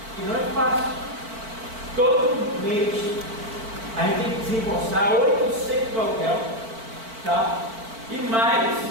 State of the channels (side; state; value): left; late; 4.5 ms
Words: e não é fácil. Todo mês a gente tem que desembolsar 800 do aluguel, tá? E mais